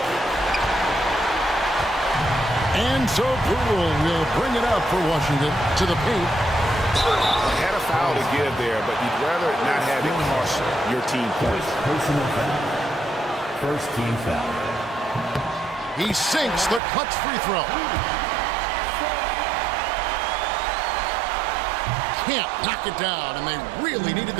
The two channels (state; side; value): drops out; left; at 16.8 s